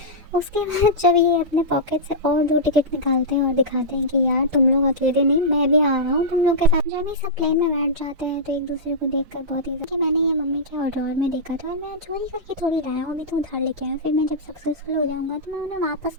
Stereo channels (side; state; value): left; late; 4.7 ms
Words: उसके बाद जब ये अपने पॉकेट से और 2 टिकट निकालते हैं और दिखाते हैं कि यार तुम लोग अकेले नहीं, मैं भी आ रहा हूँ तुम लोग के साथ। जब ये सब प्लेन में बैठ जाते हैं तो एक दूसरे को देखकर बहुत ही कि मैंने ये मम्मी के और ड्रॉर में देखा था और मैं चोरी करके थोड़ी लाया हूँ, अभी तो उधार लेके आया, फिर मैं जब सक्सेसफुल हो जाऊंगा तो मैं उन्हें वापस